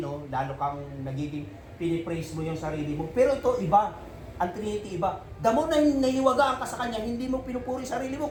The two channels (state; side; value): identical; both; correlation 1.00